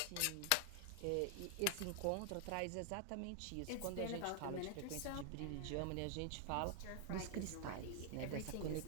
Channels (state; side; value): different; both; correlation 0.00